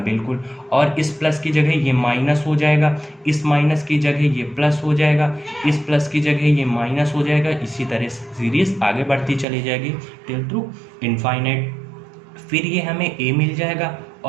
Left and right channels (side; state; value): left; drops out; at 9.5 s